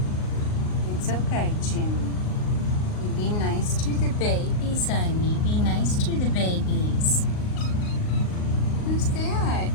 It's okay, June. You be nice to the babies, honey. Be nice to the babies. Who's that?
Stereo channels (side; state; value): right; late; 38 ms